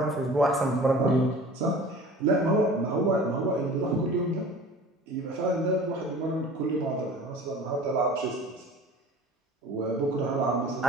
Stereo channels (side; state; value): both; normal; correlation 0.42